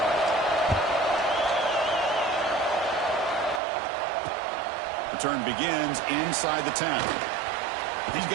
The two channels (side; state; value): left; drops out; at 3.6 s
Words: return begins inside the 10. He's